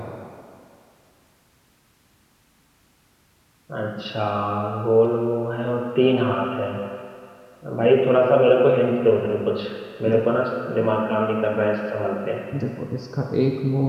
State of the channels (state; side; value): identical; both; correlation 1.00